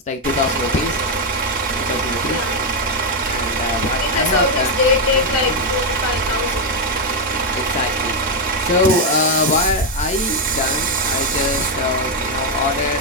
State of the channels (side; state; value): both; normal; correlation 0.03